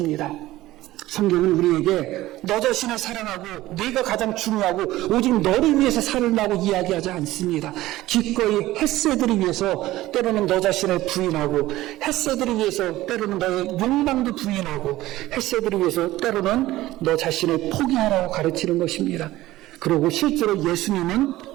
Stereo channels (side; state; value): left; quieter; 16.5 dB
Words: 성경은 우리에게 너 자신을 사랑하고 네가 가장 중요하고 오직 너를 위해서 살라고 이야기하지 않습니다. 기꺼이 헤세드를 위해서 때로는 너 자신을 부인하고, 헤세드를 위해서 때로는 너의 욕망도 부인하고, 헤세드를 위해서 때로는 너 자신을 포기하라고 가르치는 것입니다. 그리고 실제로 예수님은